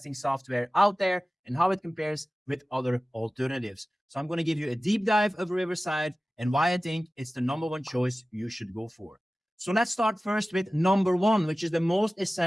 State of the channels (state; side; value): normal; both; correlation 0.96